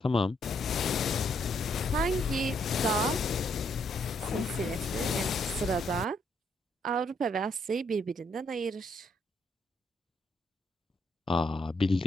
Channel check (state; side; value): normal; both; correlation 0.73